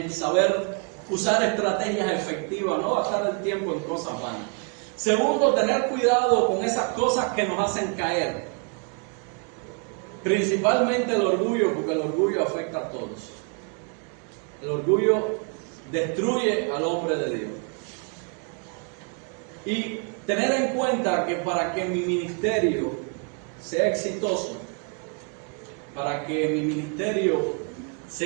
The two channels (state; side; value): quieter; left; 38.1 dB